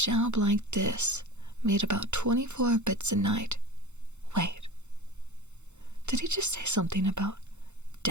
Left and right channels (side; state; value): left; late; 0.83 ms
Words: like this made about 24 bits a night. Wait, did he just say something about